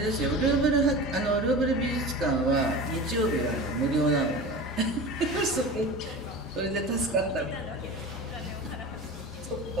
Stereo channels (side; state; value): both; normal; correlation 0.33